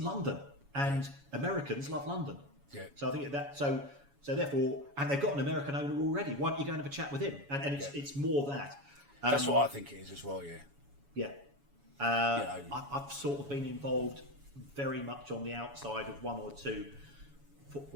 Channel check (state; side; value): late; left; 7.1 ms